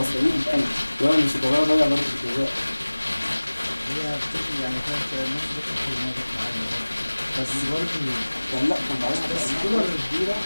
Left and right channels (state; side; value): inverted; both; correlation -1.00